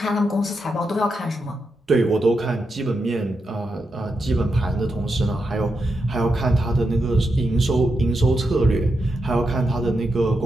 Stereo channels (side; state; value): both; normal; correlation 0.85